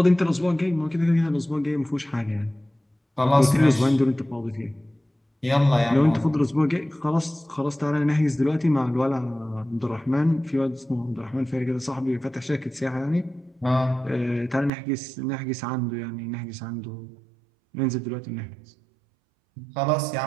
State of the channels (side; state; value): left; drops out; at 14.7 s